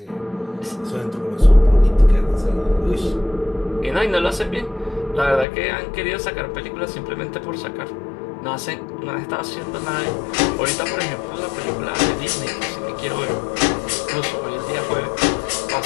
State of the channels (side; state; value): right; drops out; at 5.5 s